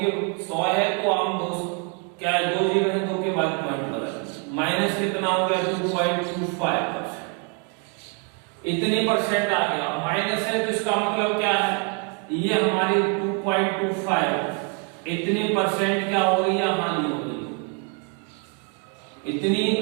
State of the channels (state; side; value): quieter; left; 33.0 dB